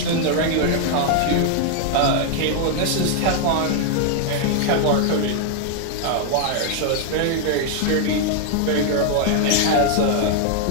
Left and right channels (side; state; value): both; different; correlation 0.00